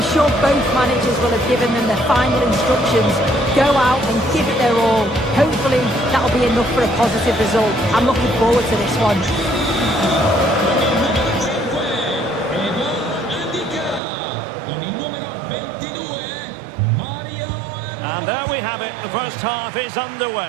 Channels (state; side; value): drops out; left; at 14.0 s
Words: sure both managers will have given them the final instructions. Go out and give it their all. Hopefully that'll be enough for a positive result. I'm looking forward to this one. And there we have it, the first half is